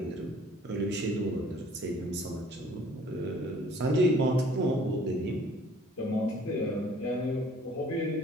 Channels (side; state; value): both; normal; correlation 0.55